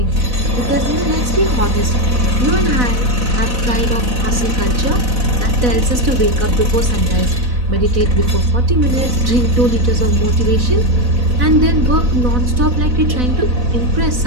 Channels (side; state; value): left; late; 4.0 ms